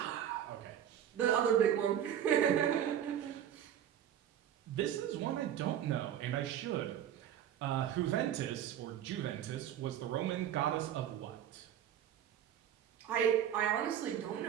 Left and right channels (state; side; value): quieter; left; 10.2 dB